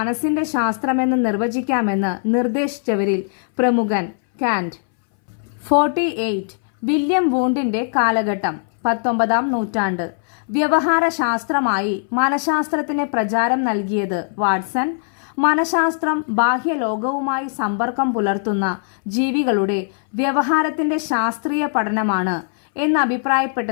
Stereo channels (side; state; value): right; silent; 63 dB below the other